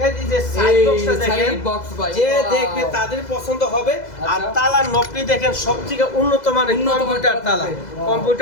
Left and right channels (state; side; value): late; right; 2.0 ms